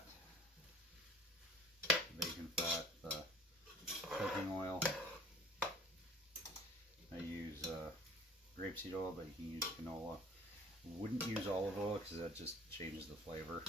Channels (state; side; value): normal; both; correlation 0.49